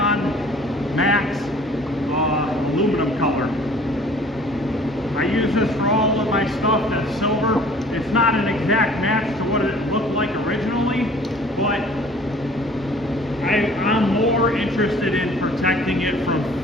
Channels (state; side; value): normal; both; correlation 0.51